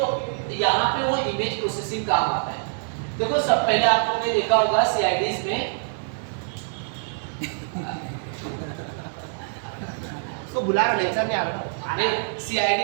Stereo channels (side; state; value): left; silent; digital silence